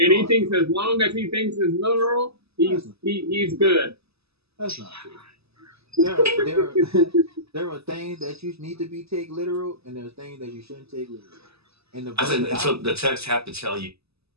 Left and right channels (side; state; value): left; late; 0.78 ms